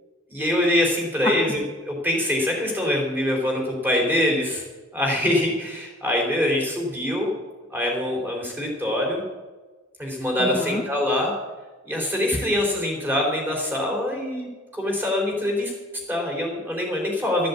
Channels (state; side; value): normal; both; correlation 0.52